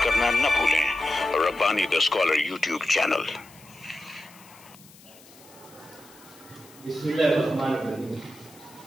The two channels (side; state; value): left; noise; hiss, 23 dB below the sound